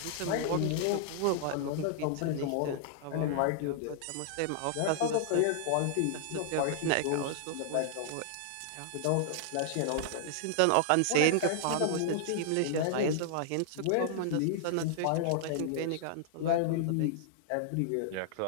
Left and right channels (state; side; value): different; both; correlation -0.01